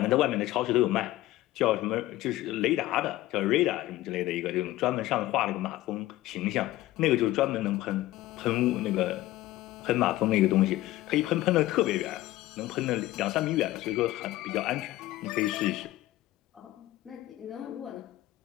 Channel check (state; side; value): quieter; right; 16.3 dB